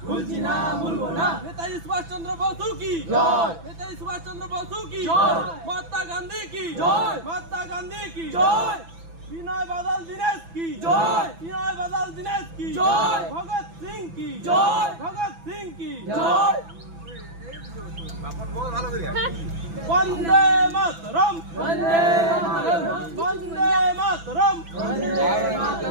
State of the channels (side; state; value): left; late; 6.0 ms